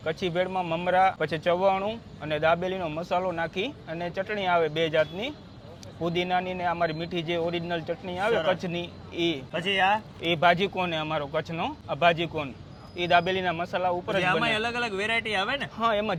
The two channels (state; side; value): identical; both; correlation 1.00